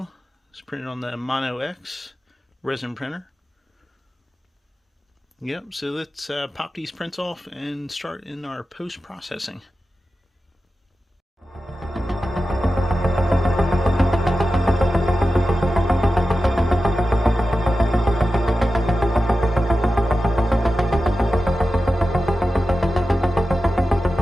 it's printed on the Mono X resin printer. Yep, so let's pop these prints off and start in our post-processing.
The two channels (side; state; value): both; normal; correlation 0.93